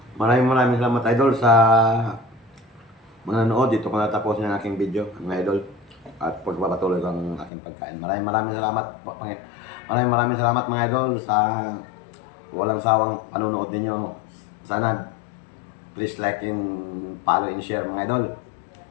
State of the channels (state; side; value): drops out; right; at 7.5 s